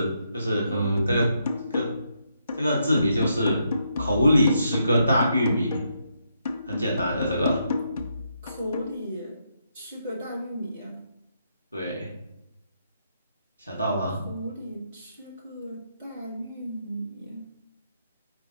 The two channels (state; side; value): inverted; both; correlation -0.78